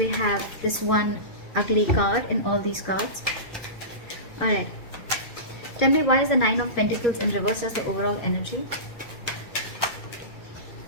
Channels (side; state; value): right; late; 2.3 ms